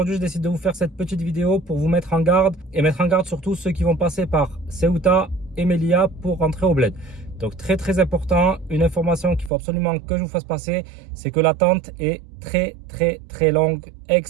je décide de vous faire cette petite vidéo pour vous mettre en garde et mettre en garde surtout ceux qui vont passer par Ceuta et Melilla pour rentrer au bled. Donc très important, une information qu'il faut absolument que je vous fasse passer, c'est que l'attente est très longue,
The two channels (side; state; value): left; drops out; at 9.5 s